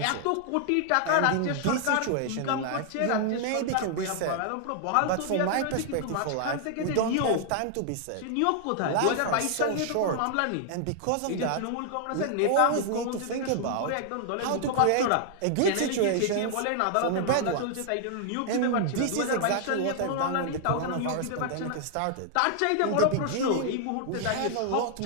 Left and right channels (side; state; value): both; different; correlation -0.01